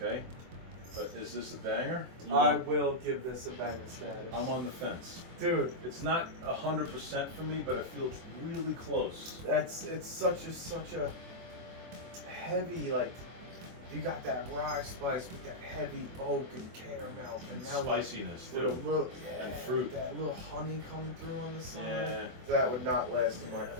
but is this a banger? I will give this a banger status. I'm on the fence. Dude, It's not 100% for me, but I feel it's really close. it's such a heavy, like, you got that rye spice with that heavy oak and caramel And now spiciness with a too. little And fruit. that little honey coming through on the side. Yeah. That would not last in my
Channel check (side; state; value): left; late; 24 ms